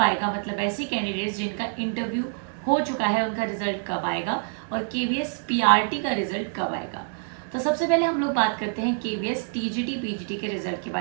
मतलब ऐसे कैंडिडेट्स जिनका इंटरव्यू हो चुका है उनका रिजल्ट कब आएगा और केवीएस पीआरटी का रिजल्ट कब आएगा। तो सबसे पहले हम लोग बात करते हैं केवीएस टीजीटी पीजीटी के रिजल्ट के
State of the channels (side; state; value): left; silent; 61 dB below the other